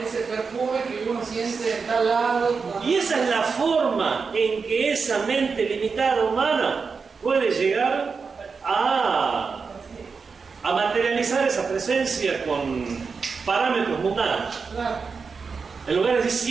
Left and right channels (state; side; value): quieter; left; 5.1 dB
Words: perfume que uno siente en tal lado. y esa es la forma en que esa mente limitada humana puede llegar a materializar esa presencia con parámetros mundanos. Claro. En lugar de decir